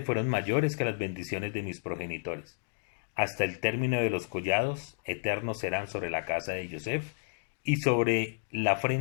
fueron mayores que las bendiciones de mis progenitores. Hasta el término de los collados eternos serán sobre la casa de Yosef y sobre la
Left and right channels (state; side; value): silent; right; digital silence